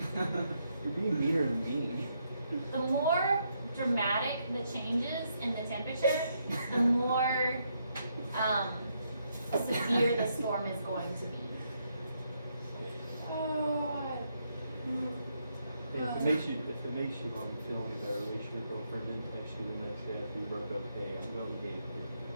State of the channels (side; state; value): both; inverted; correlation -0.77